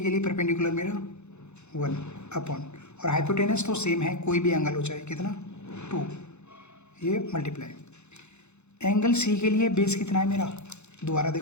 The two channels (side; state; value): right; late; 0.82 ms